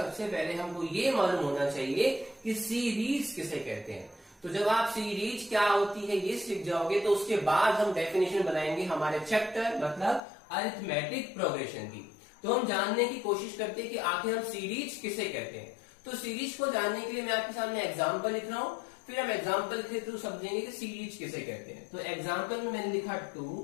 पहले हमको ये मालूम होना चाहिए कि सीरीज किसे कहते हैं। तो जब आप सीरीज क्या होती है ये सीख जाओगे तो उसके बाद हम डेफिनेशन बनाएंगे हमारे चैप्टर मतलब अरिथमेटिक प्रोग्रेशन की। तो हम जानने की कोशिश करते हैं कि आखिर हम सीरीज किसे कहते हैं। तो सीरीज को जानने के लिए मैं आपके सामने एग्जांपल लिख रहा हूं, फिर हम एग्जांपल के थ्रू समझेंगे कि सीरीज किसे कहते हैं। तो एग्जांपल में मैंने लिखा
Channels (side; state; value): right; drops out; at 10.2 s